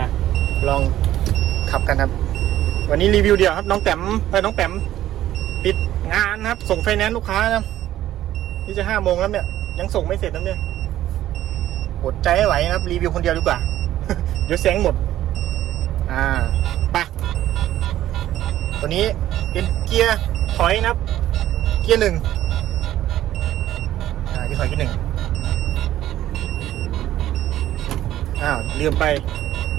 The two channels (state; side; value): quieter; left; 13.2 dB